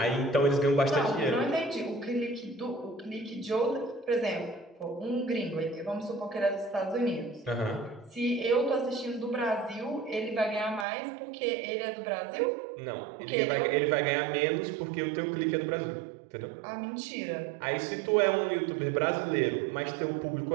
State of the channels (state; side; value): drops out; left; at 10.9 s